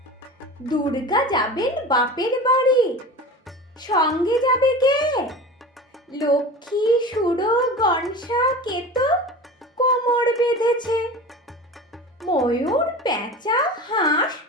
দুর্গা যাবেন বাপের বাড়ি, সঙ্গে যাবে কে? লক্ষ্মী, সুরো, গনসা, কেতো কোমর বেঁধেছে। ময়ূর, পেঁচা, হাঁস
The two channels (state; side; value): normal; both; correlation 0.33